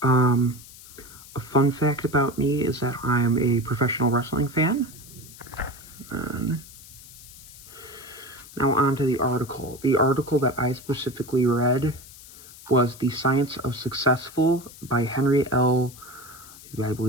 A fun fact about me is that I am a professional wrestling fan. Now on to the article. The article that I specifically read was The Science of Successful by Henry L. I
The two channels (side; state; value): left; noise; hiss, 18 dB below the sound